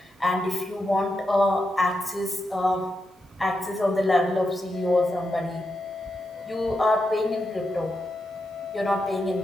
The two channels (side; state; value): both; normal; correlation 0.86